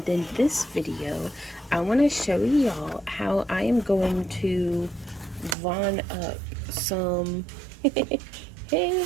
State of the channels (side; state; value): left; drops out; at 5.6 s